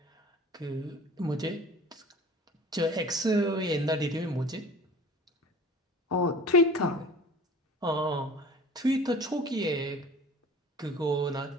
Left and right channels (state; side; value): normal; both; correlation 0.43